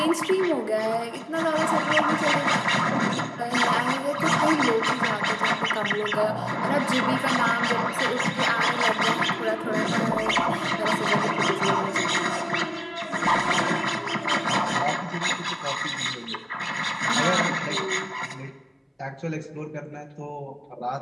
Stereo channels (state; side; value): identical; both; correlation 1.00